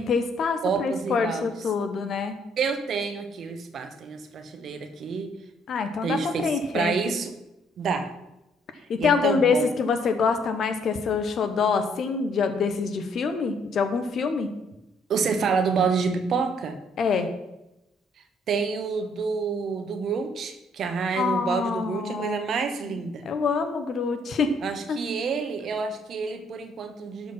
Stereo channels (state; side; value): normal; both; correlation 0.66